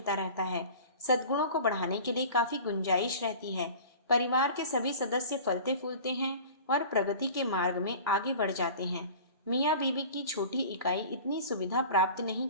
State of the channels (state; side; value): inverted; both; correlation -0.40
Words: रहता है। सद्गुणों को बढ़ाने के लिए काफी गुंजाइश रहती है। परिवार के सभी सदस्य फलते फूलते हैं और प्रगति के मार्ग में आगे बढ़ जाते हैं। मियाँ बीवी की छोटी इकाई इतनी सुविधा प्राप्त नहीं